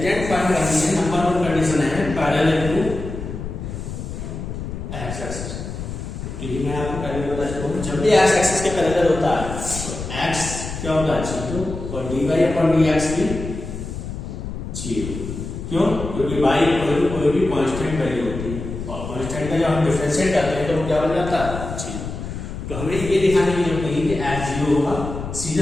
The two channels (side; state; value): left; noise; rumble, 7 dB below the sound